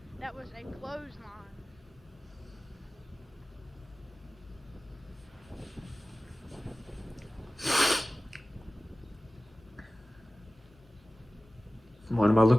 That was a clothesline. What am I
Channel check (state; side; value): normal; both; correlation 0.96